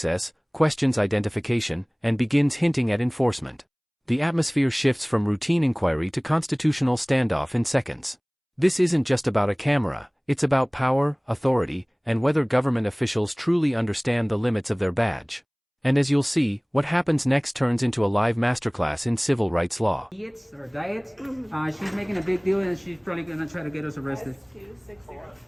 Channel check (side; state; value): both; identical; correlation 1.00